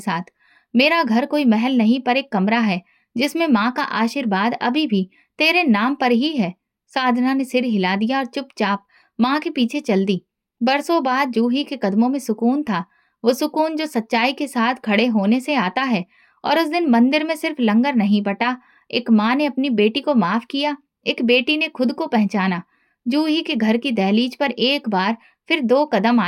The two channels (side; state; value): both; identical; correlation 1.00